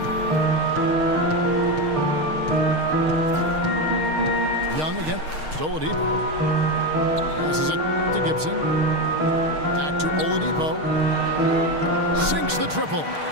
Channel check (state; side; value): late; left; 6.5 ms